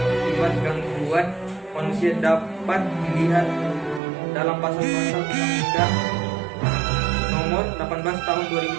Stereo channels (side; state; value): left; drops out; at 4.0 s